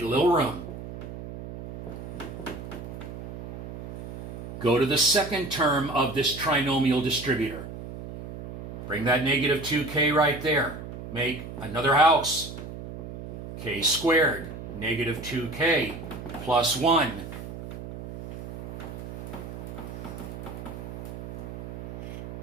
a little room. Go to the second term of this trinomial distributor. Bring that -2k right there. Make another house. K squared, -2k plus 1.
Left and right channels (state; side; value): noise; right; hum, 10 dB below the sound